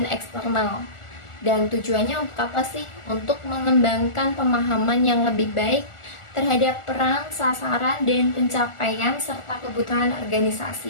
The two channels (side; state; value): right; late; 1.4 ms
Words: eksternal. Dan tujuannya untuk apa sih? Untuk mengembangkan pemahaman yang lebih baik terhadap peran, sasaran, dan pencapaian serta kebutuhan